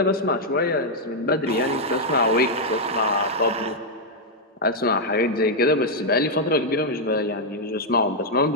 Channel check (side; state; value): both; normal; correlation -0.03